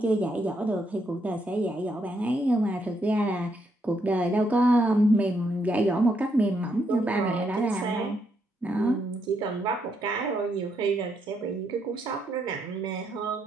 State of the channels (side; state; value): both; normal; correlation 0.77